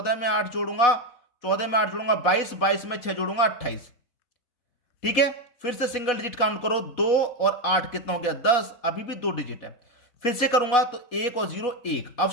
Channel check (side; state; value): right; late; 4.1 ms